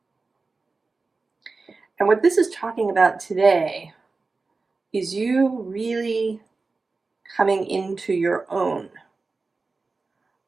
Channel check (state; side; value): quieter; left; 3.9 dB